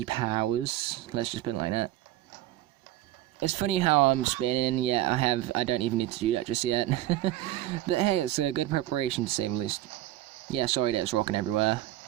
powers. Let's just put it like that. It's funny how I'm spinning. Yeah, I don't even need to do that just yet. But hey, it's a good preparation to say the least. Yeah, sorry that it's rocking everywhere.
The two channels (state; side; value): quieter; left; 14.7 dB